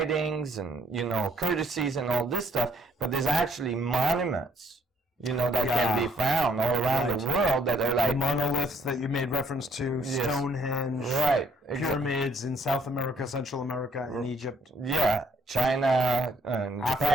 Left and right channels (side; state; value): both; normal; correlation 0.66